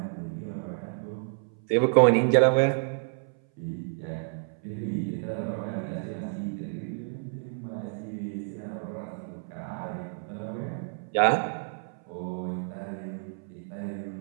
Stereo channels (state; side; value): silent; left; 58 dB below the other